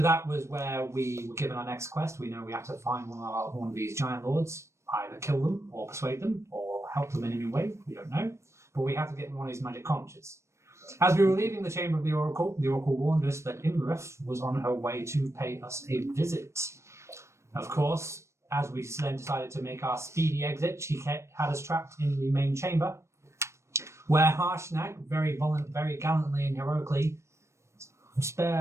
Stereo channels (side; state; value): left; late; 0.13 ms